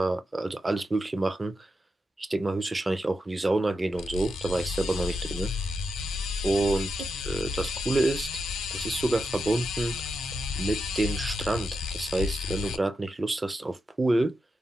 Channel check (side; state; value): both; normal; correlation 0.87